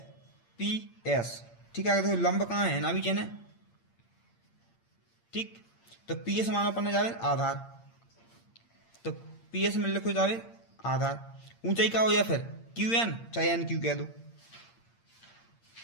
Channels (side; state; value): right; late; 8.7 ms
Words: ठीक है। देखो लंब कहाँ है ना भी चेने। ठीक, तो पी एस मानो अपन ने जाबिर आधार, तो पी एस में लिखो जाबिर आधार। ऊंचाई क्या हो जाए फिर क्यू एन, चाहे एन क्यू कह दो,